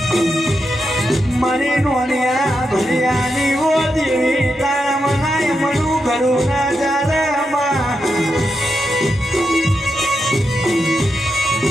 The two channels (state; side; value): normal; both; correlation 0.85